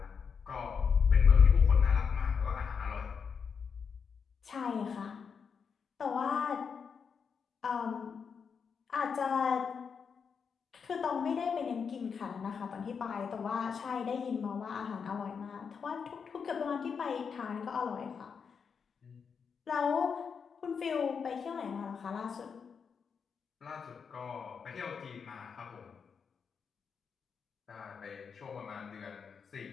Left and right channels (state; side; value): quieter; right; 6.2 dB